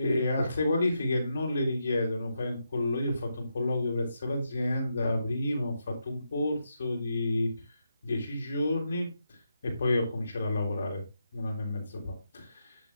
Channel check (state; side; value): inverted; both; correlation -0.84